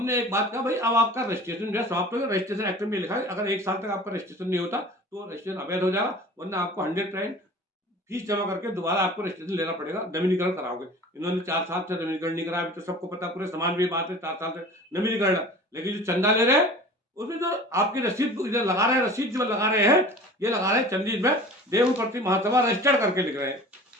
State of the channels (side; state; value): both; normal; correlation 0.41